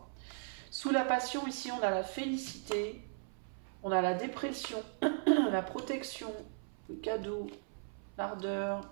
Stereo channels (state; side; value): silent; left; 53 dB below the other